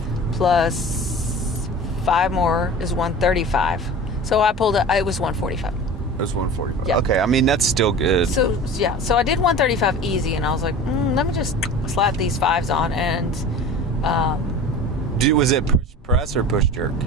plus 5 more is 135. So I pulled it. It was 145. It was 145. Yeah. Okay, I mean, that's still good. So yeah, so I did 135 easy, and I was like, let me just slap these 5s on, and Was it push press or push jerk?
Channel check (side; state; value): both; normal; correlation 0.37